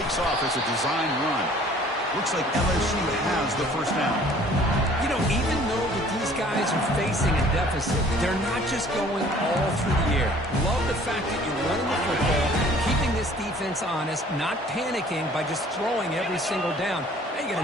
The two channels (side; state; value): both; normal; correlation 0.53